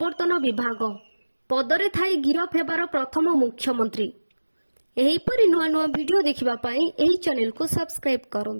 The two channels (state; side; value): inverted; both; correlation -1.00